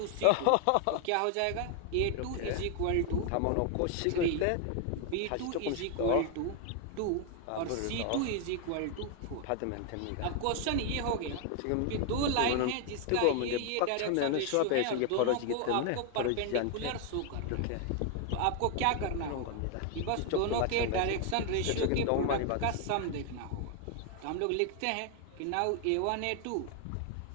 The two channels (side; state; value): both; different; correlation 0.00